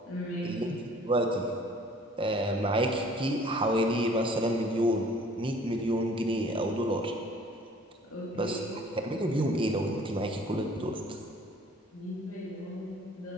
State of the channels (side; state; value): both; normal; correlation 0.53